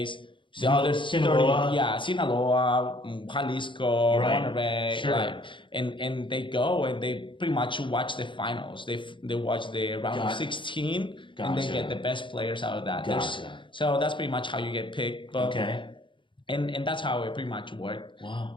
The other 30, Sinaloa. yeah, Sinaloa, Jalisco, Right. Monterrey, Sure. like, and they go and they pretty much watch the finals. They watch the round of 16, and they Gotcha. get the best players out of that. So that's pretty much how you get picked. But, Okay. And that's how it pretty much worked.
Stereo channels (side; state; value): right; late; 0.24 ms